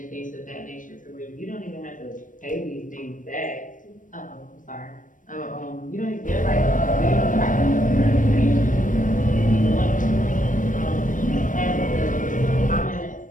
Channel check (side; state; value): right; late; 0.38 ms